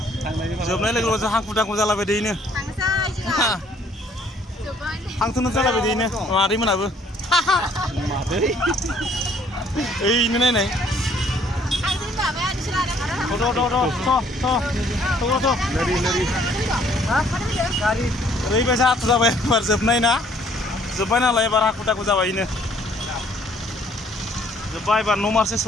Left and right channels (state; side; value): normal; both; correlation 0.62